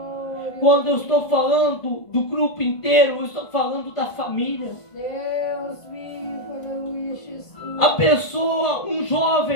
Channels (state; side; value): late; right; 1.5 ms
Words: Quando eu estou falando do grupo inteiro, eu estou falando da família. Deus vivo, aleluia, Jesus. A pessoa, um